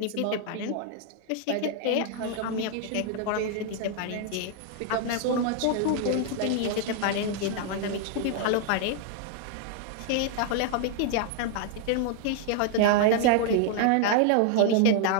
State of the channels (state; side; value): different; both; correlation 0.00